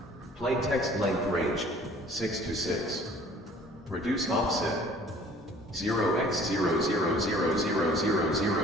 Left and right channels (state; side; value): normal; both; correlation 0.52